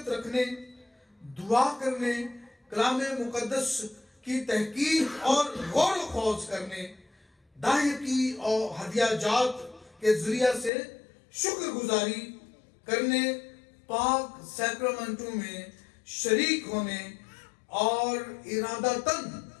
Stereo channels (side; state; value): right; drops out; at 10.7 s